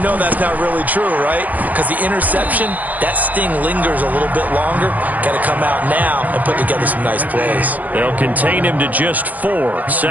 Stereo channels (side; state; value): left; late; 0.080 ms